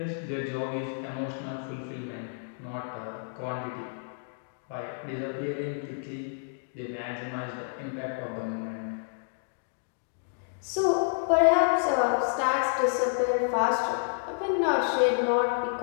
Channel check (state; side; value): silent; right; digital silence